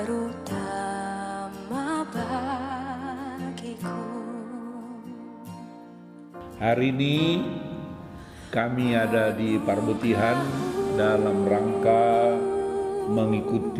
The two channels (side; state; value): both; identical; correlation 1.00